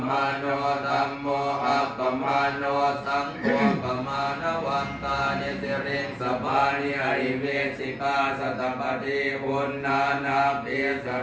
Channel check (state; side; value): identical; both; correlation 1.00